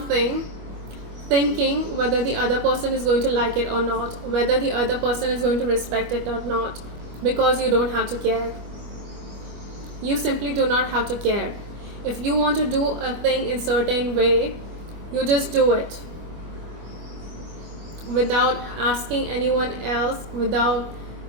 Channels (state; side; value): late; left; 25 ms